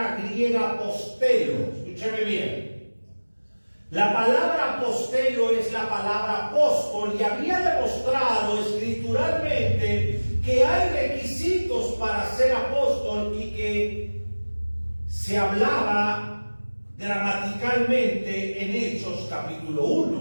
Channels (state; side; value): inverted; both; correlation -1.00